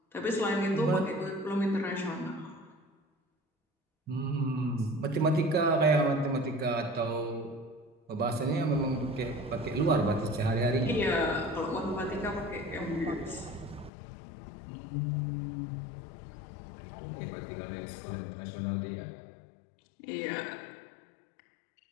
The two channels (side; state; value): right; drops out; at 13.9 s